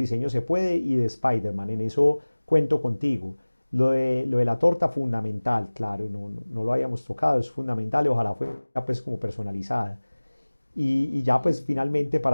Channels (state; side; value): inverted; both; correlation -1.00